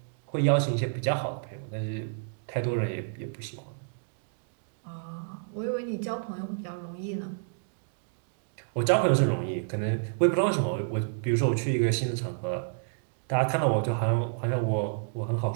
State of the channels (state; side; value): silent; left; digital silence